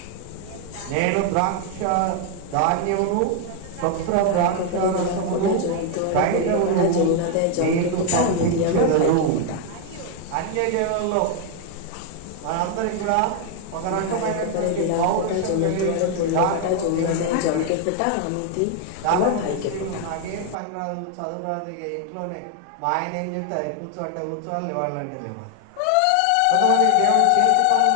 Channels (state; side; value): different; both; correlation 0.00